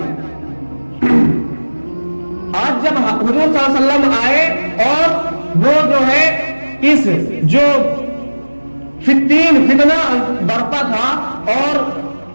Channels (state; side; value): inverted; both; correlation -1.00